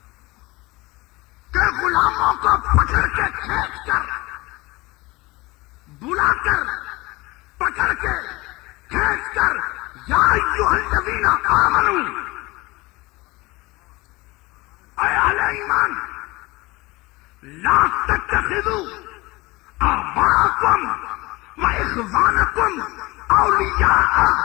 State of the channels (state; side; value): quieter; right; 22.3 dB